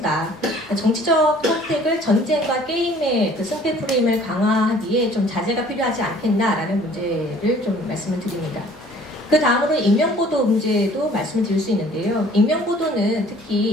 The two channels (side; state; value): both; normal; correlation 0.54